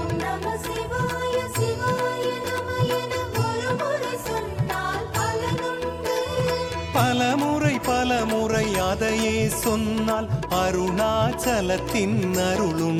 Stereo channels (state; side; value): identical; both; correlation 1.00